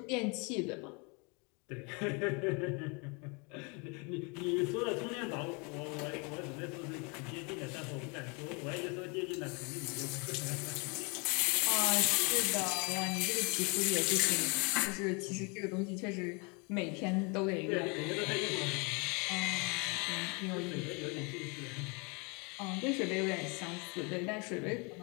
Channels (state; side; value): quieter; right; 31.9 dB